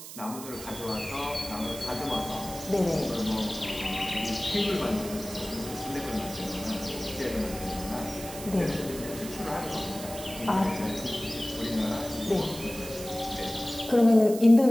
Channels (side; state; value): right; noise; hiss, 12 dB below the sound